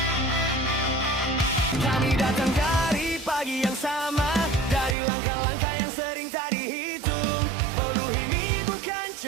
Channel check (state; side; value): drops out; left; at 5.0 s